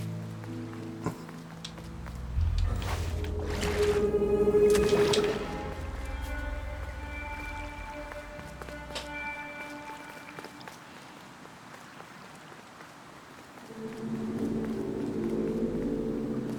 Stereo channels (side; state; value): both; identical; correlation 1.00